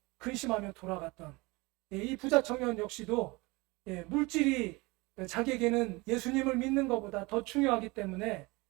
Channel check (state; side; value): quieter; left; 24.4 dB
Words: 근심하며 돌아갔던 이 부자 청년 역시도 물질이 자기에게는 예수님을 믿는 것보다 더 중요하기 때문에